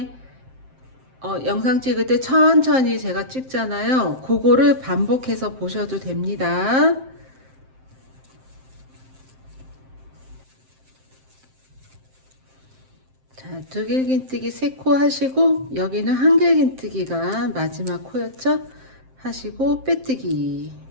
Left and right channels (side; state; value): left; late; 7.6 ms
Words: 영상 찍을 때 천천히 제가 찍잖아요. 그거를 반복해서 보셔도 됩니다. 자, 두길긴뜨기 3코 하시고, 여기는 한길긴뜨기가 마지막 코였죠? 하시고 빼뜨기.